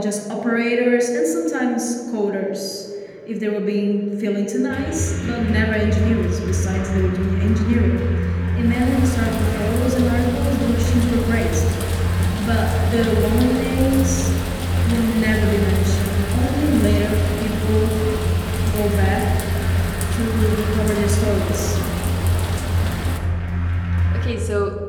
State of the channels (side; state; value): both; identical; correlation 1.00